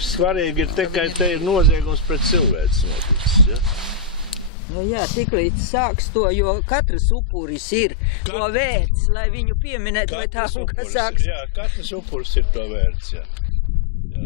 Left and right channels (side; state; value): right; drops out; at 4.5 s